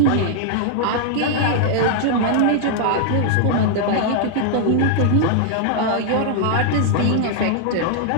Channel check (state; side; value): different; both; correlation -0.01